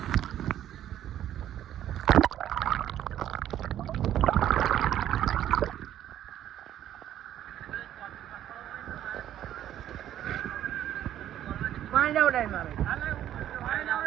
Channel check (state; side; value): quieter; left; 11.6 dB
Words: પાણી જાવ ડાય મારે